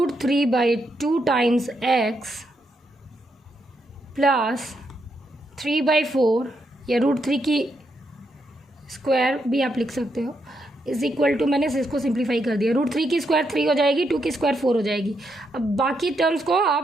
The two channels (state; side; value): normal; both; correlation 0.80